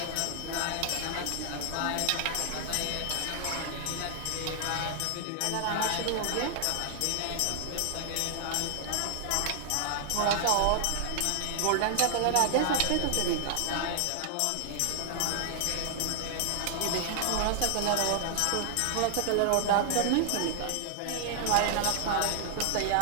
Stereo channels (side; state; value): both; different; correlation 0.00